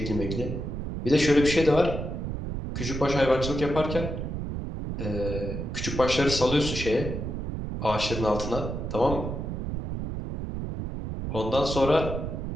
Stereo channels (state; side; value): noise; right; rumble, 4 dB below the sound